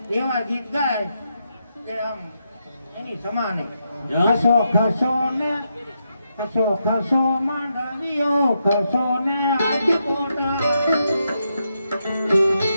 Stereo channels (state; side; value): inverted; both; correlation -0.83